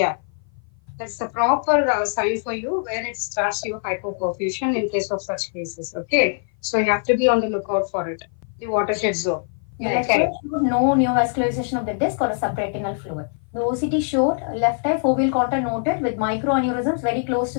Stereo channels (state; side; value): silent; right; 56 dB below the other